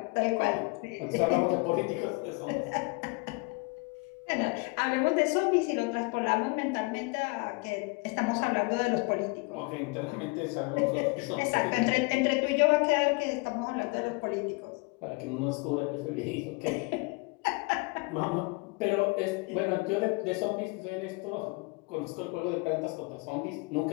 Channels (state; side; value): quieter; right; 28.6 dB